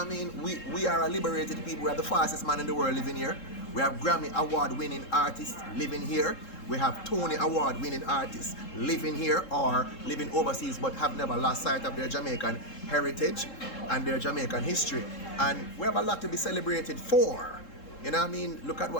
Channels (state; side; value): late; right; 3.7 ms